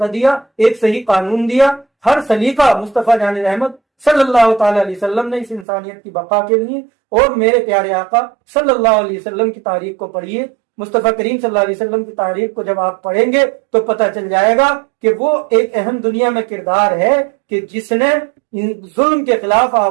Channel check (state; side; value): drops out; left; at 5.7 s